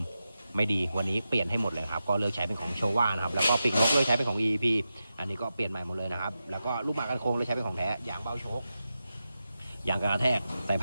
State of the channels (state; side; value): inverted; both; correlation -0.90